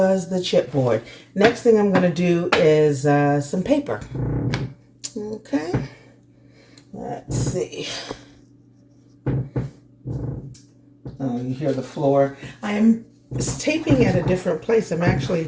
the chipboard. Next thing I'm going to do is some paper. Okay, let's see. Oh, you hear the floor. I am taping at a different place. I'm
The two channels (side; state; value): both; identical; correlation 1.00